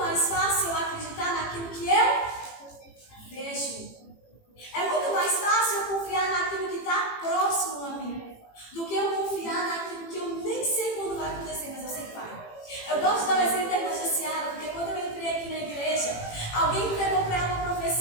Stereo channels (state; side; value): late; right; 18 ms